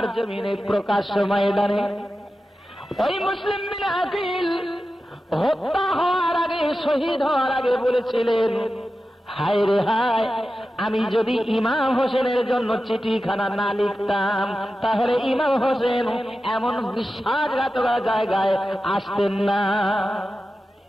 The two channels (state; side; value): normal; both; correlation 0.93